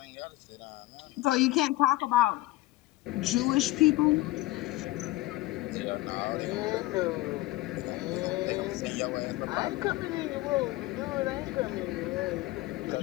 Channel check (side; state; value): right; quieter; 19.0 dB